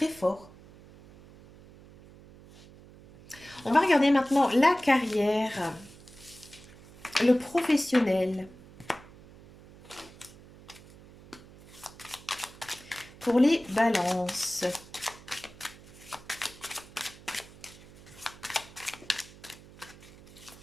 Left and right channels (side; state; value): right; noise; hum, 21 dB below the sound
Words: fort. On va regarder maintenant la carrière, le professionnel. Pour les balances.